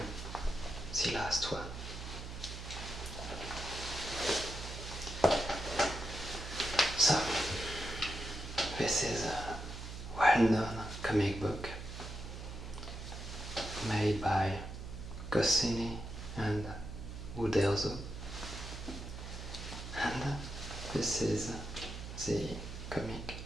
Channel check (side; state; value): right; noise; hum, 9 dB below the sound